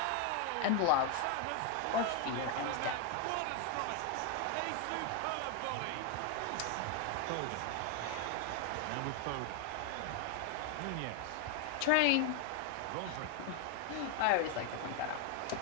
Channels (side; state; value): both; different; correlation 0.01